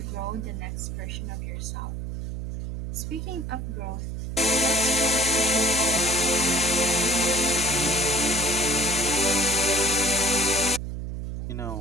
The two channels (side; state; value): right; noise; hum, 5 dB below the sound